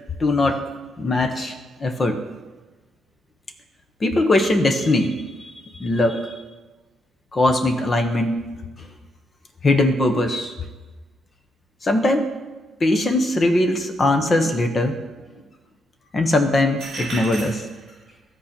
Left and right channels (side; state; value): both; normal; correlation 0.80